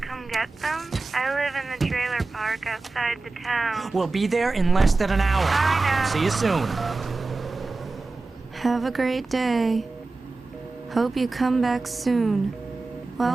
come get them? I live in the trailer park outside the town. We'll be there in less than an hour. I know. See you soon. Have a great day. Hope you come back soon.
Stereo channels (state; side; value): quieter; left; 3.6 dB